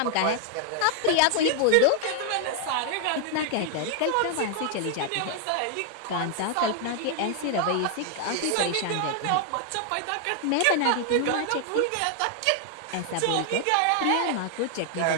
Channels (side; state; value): both; different; correlation 0.00